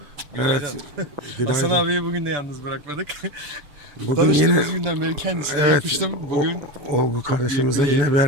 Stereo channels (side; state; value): left; late; 7.0 ms